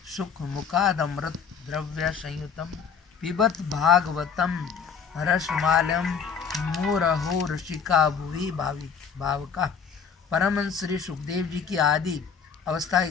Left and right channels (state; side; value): quieter; right; 6.4 dB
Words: सुख मुखादमृत द्रव्य संयुतम पिबत भागवतम रसमालयम मुरहो ऋषिका भुवि भावका। परमहंस श्री सुखदेव जी की आदि अवस्था की